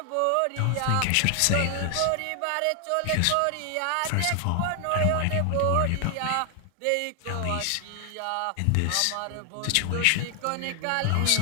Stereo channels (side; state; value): both; different; correlation 0.00